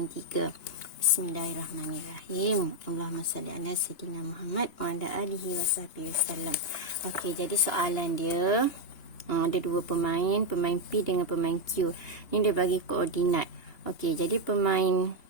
Bismillahirrahmanirrahim. Allahumma salli ala sayyidina Muhammad wa ala alihi wasallam. Okey, jadi soalan dia ada dua pemain P dengan pemain Q. Ni dia bagi koordinat. Okey, jadi pemain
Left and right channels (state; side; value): late; right; 2.8 ms